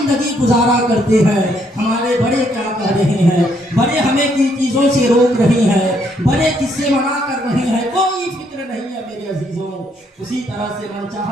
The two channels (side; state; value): both; normal; correlation 0.71